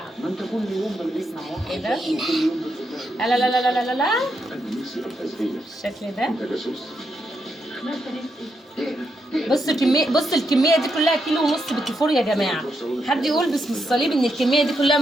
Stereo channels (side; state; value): both; normal; correlation 0.82